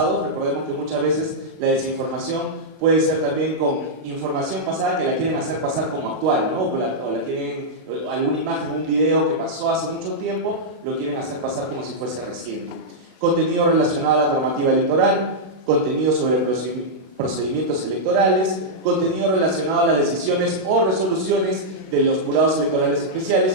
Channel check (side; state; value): left; late; 32 ms